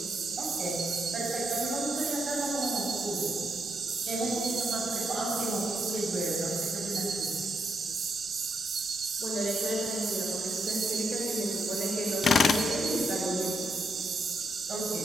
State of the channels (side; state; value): right; noise; hum, 29 dB below the sound